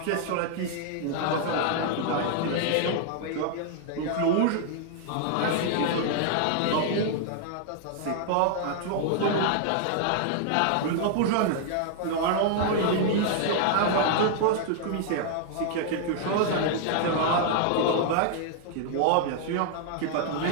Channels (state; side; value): different; both; correlation 0.00